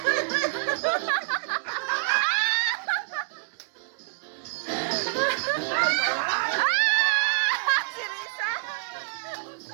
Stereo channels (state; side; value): silent; left; 59 dB below the other